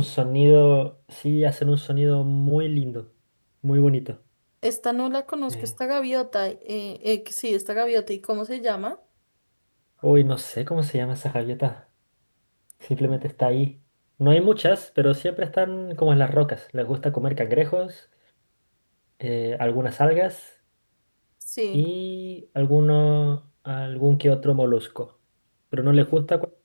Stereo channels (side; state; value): both; inverted; correlation -1.00